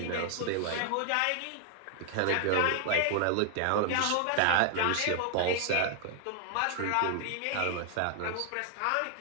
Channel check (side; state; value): both; different; correlation 0.00